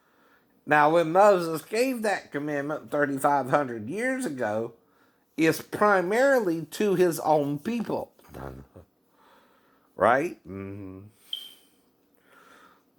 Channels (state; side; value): identical; both; correlation 1.00